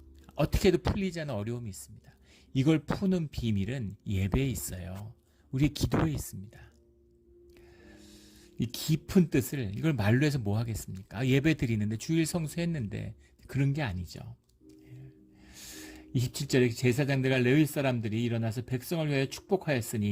어떻게 해도 풀리지 않는 어려움이 있습니다. 이걸 푸는 비밀은 예배에 있어요. 우리의 기도에 있습니다. 이 깊은 뜻을 이걸 말로 해서 뭐 하겠습니까? 예배 드리는데 주일 성수했는데 그런 게 아니죠. 27절에 제사장들과 레위 사람들이 일어나서 백성을 위하여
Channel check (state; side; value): identical; both; correlation 1.00